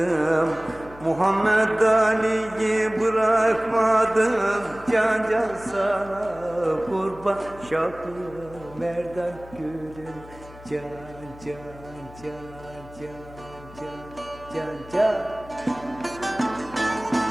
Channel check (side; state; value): left; noise; hum, 19 dB below the sound